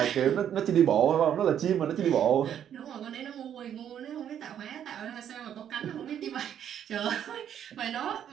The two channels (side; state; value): left; quieter; 9.6 dB